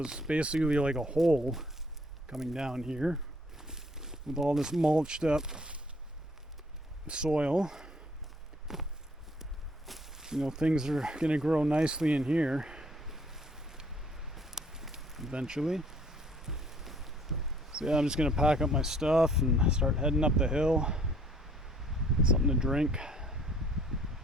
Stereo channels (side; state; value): both; normal; correlation 0.59